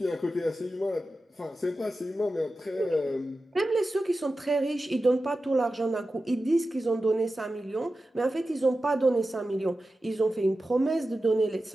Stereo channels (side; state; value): both; normal; correlation 0.93